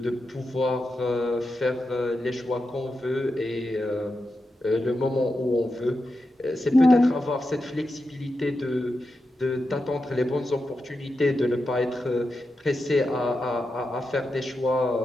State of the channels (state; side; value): normal; both; correlation 0.89